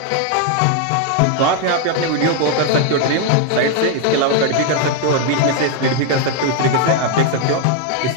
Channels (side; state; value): both; different; correlation 0.00